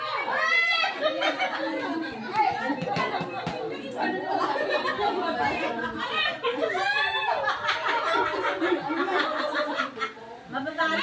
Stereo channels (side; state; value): both; identical; correlation 1.00